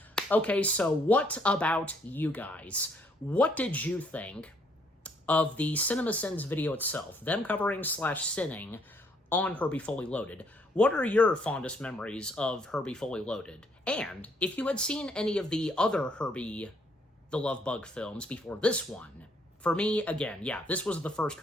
Okay, so what about you guys? What did you think of the CinemaSins video itself, them covering / sinning on Herbie Fully Loaded? What are your fondest memories of Herbie Fully Loaded? And if you had seen any of the other Herbie the Love Bug films before this one, for me, again, yeah, this was the first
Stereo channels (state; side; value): normal; both; correlation 0.68